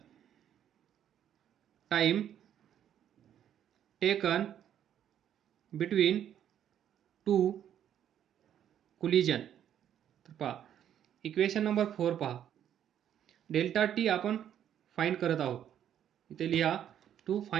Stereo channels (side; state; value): left; quieter; 10.1 dB